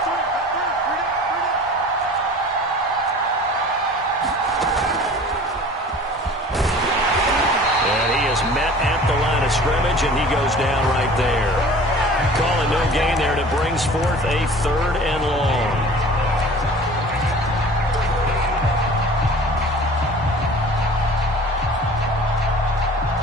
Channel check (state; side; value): normal; both; correlation 0.44